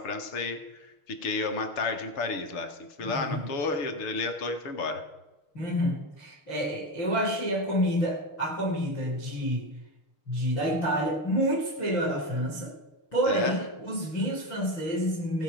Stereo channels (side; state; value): right; late; 6.5 ms